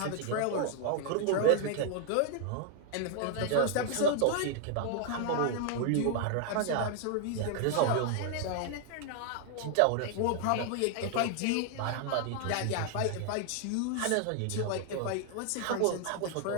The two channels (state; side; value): different; both; correlation 0.00